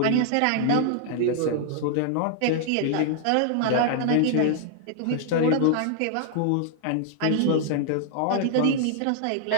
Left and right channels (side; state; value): both; different; correlation -0.01